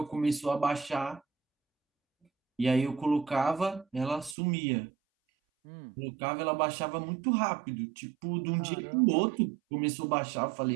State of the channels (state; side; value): drops out; left; at 4.4 s